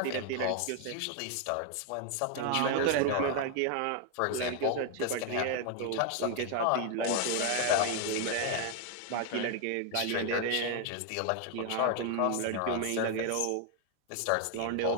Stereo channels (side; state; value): both; different; correlation 0.01